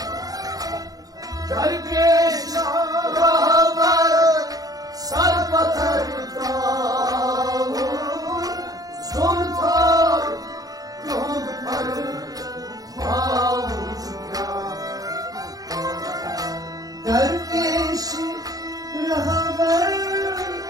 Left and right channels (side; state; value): left; late; 0.18 ms